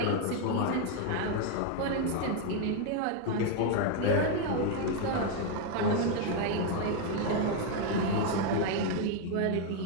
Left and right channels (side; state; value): both; different; correlation 0.01